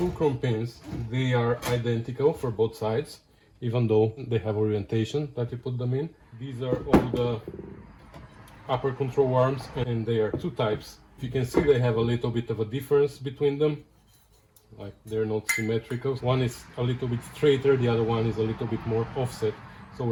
pins, they are identical for both sides, even though they have orientation that you put them in. These are all the upper control arms, and they are two types. If you can see, they have a little bit of a difference between them, like they're not symmetrical. One is a little bit straighter, the other one is a little bit more offset. So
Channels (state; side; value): identical; both; correlation 1.00